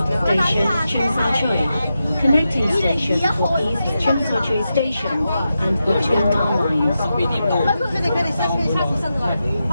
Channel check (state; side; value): inverted; both; correlation -0.89